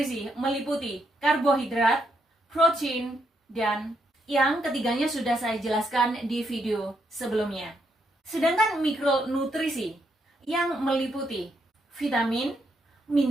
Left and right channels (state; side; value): normal; both; correlation 0.77